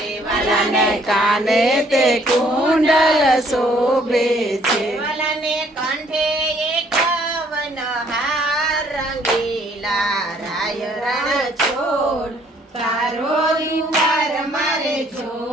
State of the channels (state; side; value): normal; both; correlation 0.63